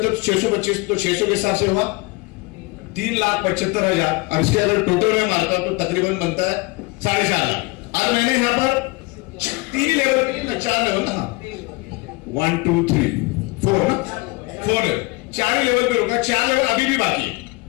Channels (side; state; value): right; quieter; 25.0 dB